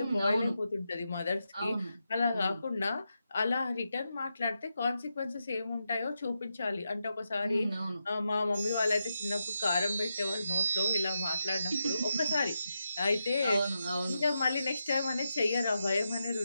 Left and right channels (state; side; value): inverted; both; correlation -0.87